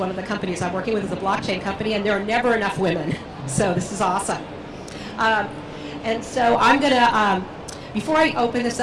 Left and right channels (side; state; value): both; identical; correlation 1.00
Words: of the companies I'm working with is a blockchain company, and there are never enough women. So this is awesome. And so I'm going to, before I open this